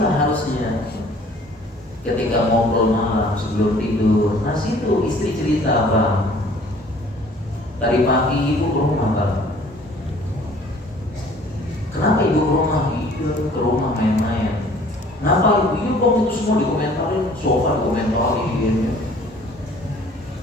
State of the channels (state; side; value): normal; both; correlation 0.53